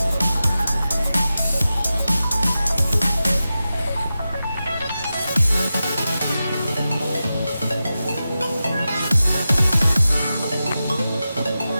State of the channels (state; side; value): inverted; both; correlation -0.92